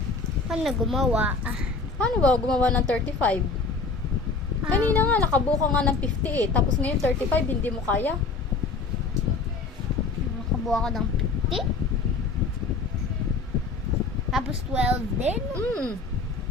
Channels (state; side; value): quieter; right; 4.1 dB